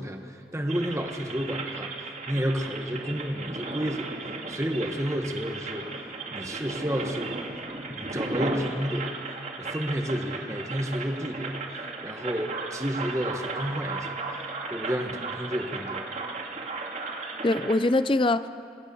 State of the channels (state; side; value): normal; both; correlation 0.70